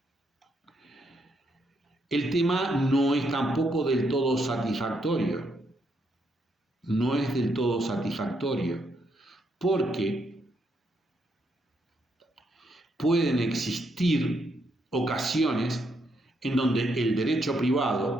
El tema no es tampoco del todo satisfactorio. No es del todo satisfactorio, porque pueden existir ocasiones en donde el derecho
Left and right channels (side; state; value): both; normal; correlation 0.77